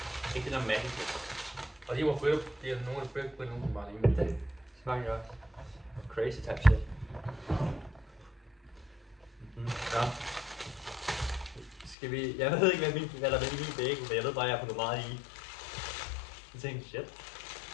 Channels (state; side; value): drops out; right; at 12.0 s